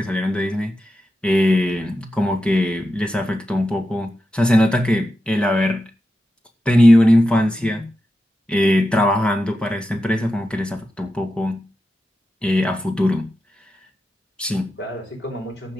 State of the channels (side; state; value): both; normal; correlation 0.90